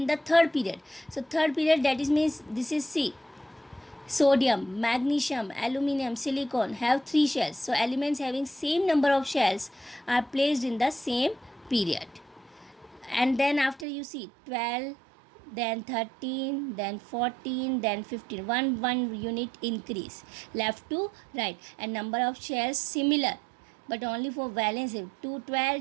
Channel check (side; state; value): left; drops out; at 13.9 s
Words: the third period. So third period, that is means this is C. Sodium, magnesium, aluminum, silicon have 3 shells. So elements having same number of shells are placed in the same period. And then after you see 12, then 13, then 14, then 15, one unit increase left to right, and number of shells similar but only for valence. 2,